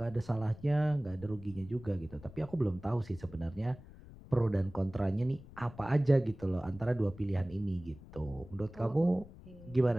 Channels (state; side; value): noise; left; rumble, 18 dB below the sound